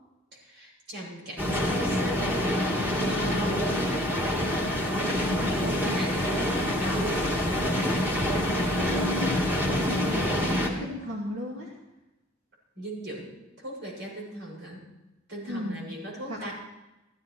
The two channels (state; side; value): normal; both; correlation 0.54